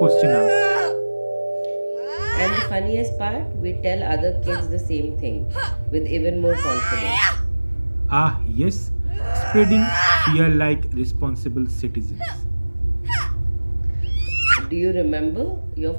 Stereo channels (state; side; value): inverted; both; correlation -1.00